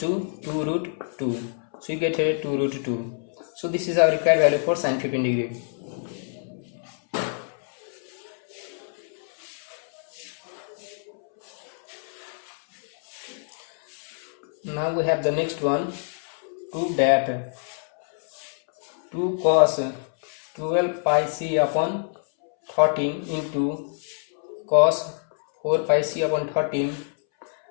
2 root 2. So you get here 2 root 2. So this is our required value for sin 15 degree. Now we have the next one. Prove that 2 cos 12 pi c upon 13 into cos 4 pi c upon 13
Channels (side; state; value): right; silent; 61 dB below the other